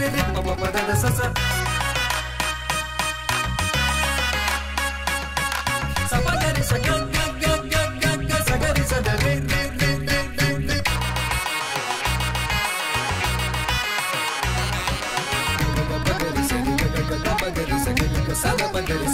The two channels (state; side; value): identical; both; correlation 1.00